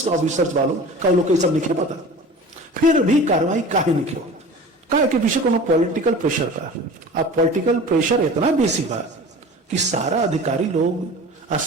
ऑफिसर्स वालों का लोग सब नहीं पता, फिर भी कार्रवाई काहे नहीं हो। काहे के पीछे कोनो पॉलिटिकल प्रेशर बा। अब पॉलिटिकल प्रेशर इतना बेसी बा कि सारा अधिकारी लोग और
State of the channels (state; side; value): normal; both; correlation 0.39